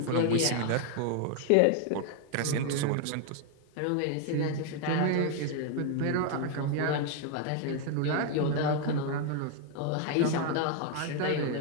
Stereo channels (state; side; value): different; both; correlation 0.00